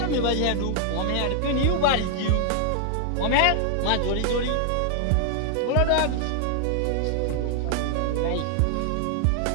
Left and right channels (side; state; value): both; different; correlation 0.00